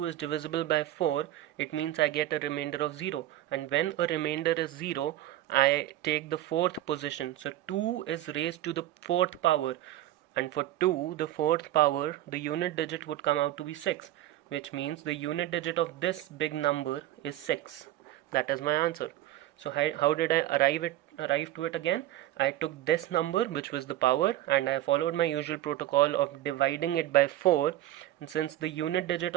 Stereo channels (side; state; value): left; quieter; 14.2 dB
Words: is divisible by 4, it means I get a remainder of 0, and when a remainder is 0, I take the fourth position. So 2 is raised to the fourth power, and for 2, the fourth power, the unit digit would come out to be 6, which means the unit digit of this big number is 6. That is my answer. So how did I arrive to it again? I took this number, which was the power, and I followed my usual protocol of dividing it by 4, and since the unit digit